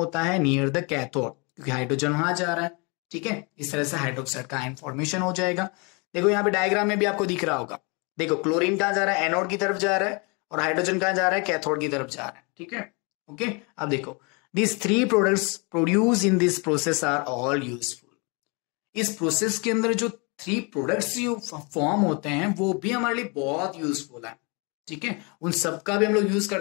है, नियर द कैथोड, क्योंकि हाइड्रोजन वहां जा रहा है। ठीक है, इस तरह से हाइड्रोक्साइड का आयन फॉर्मेशन हो जाएगा। देखो यहाँ पे डायग्राम में भी आपको दिख रहा होगा, देखो क्लोरीन कहां जा रहा है, एनोड की तरफ जा रहा है, और हाइड्रोजन कहां जा रहा है, कैथोड की तरफ जा रहा है। ठीक है, ओके, अब देखो these 3 products produced in this process are all useful। इस प्रोसेस के अंदर जो 3 प्रोडक्ट्स जो फॉर्म होते हैं वो भी हमारे लिए बहुत यूजफुल है। ठीक है, उन सबका भी हम लोग यूज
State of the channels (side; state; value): right; quieter; 31.3 dB